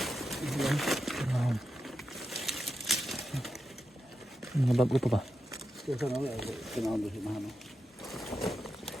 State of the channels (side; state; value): both; normal; correlation 0.88